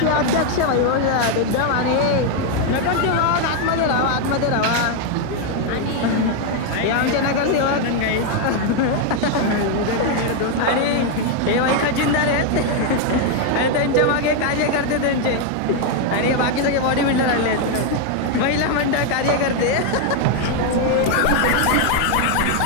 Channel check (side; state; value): both; different; correlation 0.01